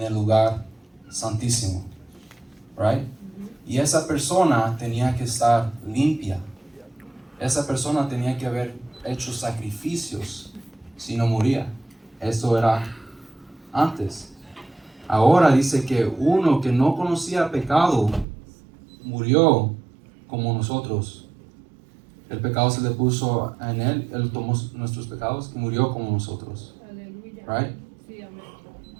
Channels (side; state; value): left; drops out; at 18.2 s